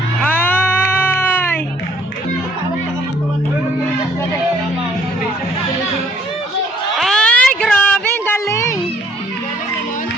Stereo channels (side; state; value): both; normal; correlation 0.61